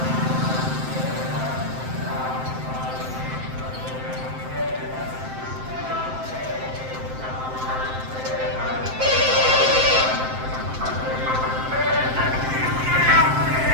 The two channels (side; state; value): left; late; 7.7 ms